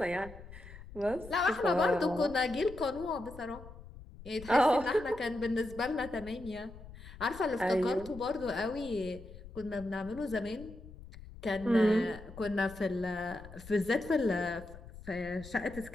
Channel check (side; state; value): left; noise; rumble, 16 dB below the sound